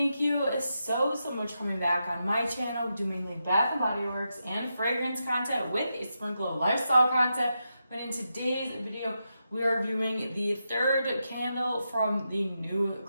you so much for coming back on my channel. We do mainly Bath and Body Works and fragrance content with a sprinkle of lifestyle content. But in today's video, we are reviewing the third candle from the new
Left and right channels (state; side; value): inverted; both; correlation -0.86